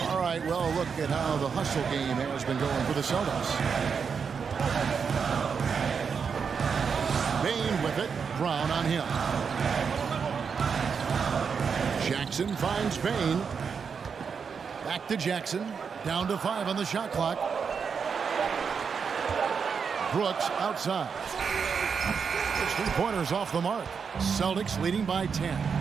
All right, well, look at how the hustle game has been going for the Celtics. Bain with it. Brown on him. Jackson finds Bain. Back to Jackson. Down to 5 on the shot clock. Brooks outside. His 3-pointers off the mark. Celtics leading by 10.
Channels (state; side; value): quieter; left; 6.1 dB